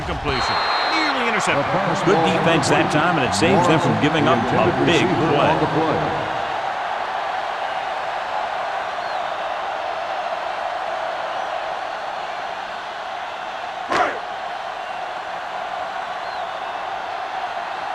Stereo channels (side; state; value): both; identical; correlation 1.00